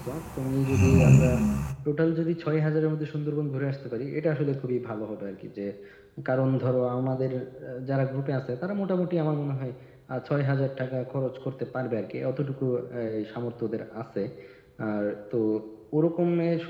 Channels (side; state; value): both; identical; correlation 1.00